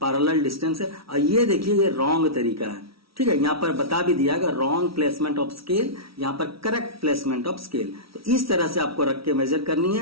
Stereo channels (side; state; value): left; late; 0.75 ms